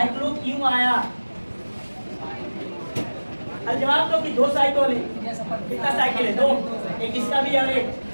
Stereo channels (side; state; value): both; inverted; correlation -1.00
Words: क्यों आया? जवाब दो कि 2 साइक्लो है। कितना साइकिल है? 2। एक इसका भी और एक